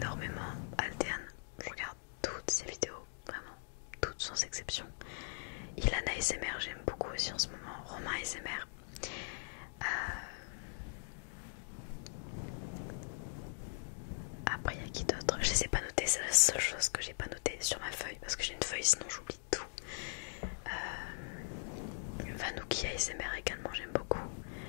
Altean, je regarde toutes ses vidéos, vraiment, toutes sans exception. Ilan ASMR j'aime beaucoup aussi en ce moment, Romain ASMR. Après il y a qui d'autre? Je les ai pas notés, c'est la seule chose que j'ai pas notée sur ma feuille parce que j'ai une feuille sinon j'oublie tout. Vanouki ASMR également j'aime beaucoup.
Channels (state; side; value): silent; right; digital silence